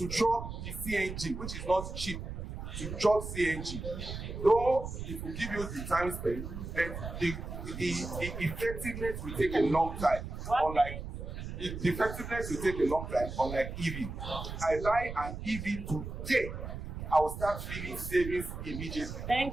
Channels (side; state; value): right; noise; rumble, 7 dB below the sound